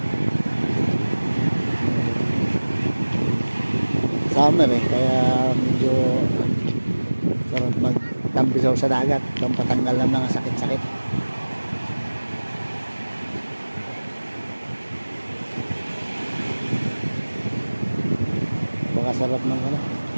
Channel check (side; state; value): both; inverted; correlation -1.00